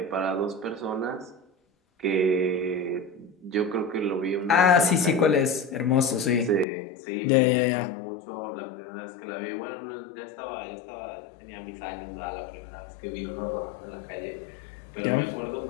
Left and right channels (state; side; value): drops out; right; at 6.7 s